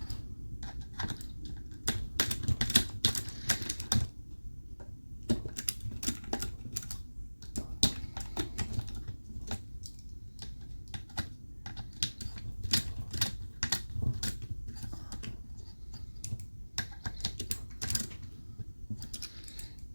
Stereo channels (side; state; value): both; inverted; correlation -1.00